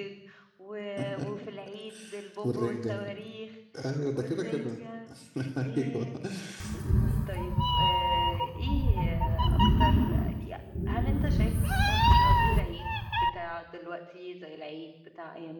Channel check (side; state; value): both; identical; correlation 1.00